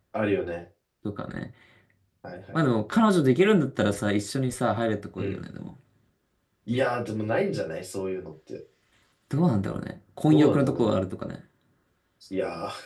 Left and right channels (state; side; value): identical; both; correlation 1.00